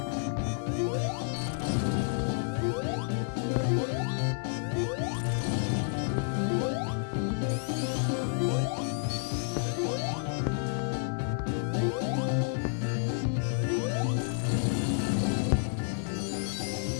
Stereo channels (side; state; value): right; silent; digital silence